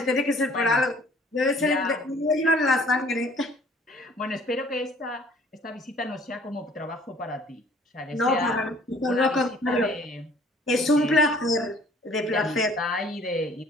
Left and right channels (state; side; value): normal; both; correlation 0.55